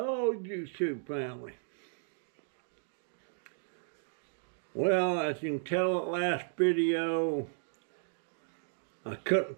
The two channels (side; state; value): left; silent; digital silence